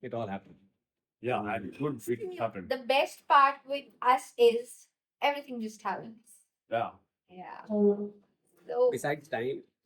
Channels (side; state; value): both; identical; correlation 1.00